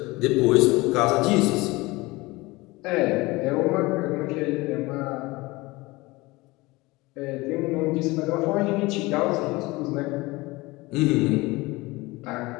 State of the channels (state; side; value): quieter; right; 22.1 dB